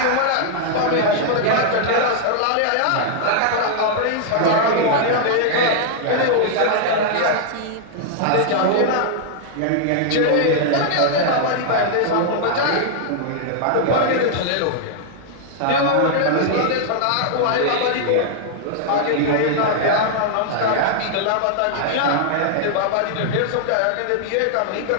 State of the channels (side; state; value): both; different; correlation -0.01